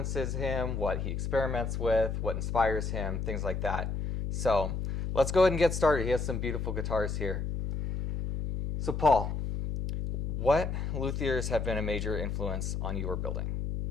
him, what he experiments with, what inspires him, things like that. So let's go ahead and get started. He has some beautiful guitars here. So Paul, what luthiers have been a major influence on your building?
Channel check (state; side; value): noise; left; hum, 2 dB below the sound